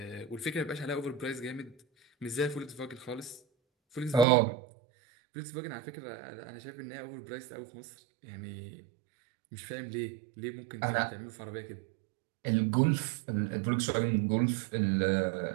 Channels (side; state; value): left; drops out; at 4.2 s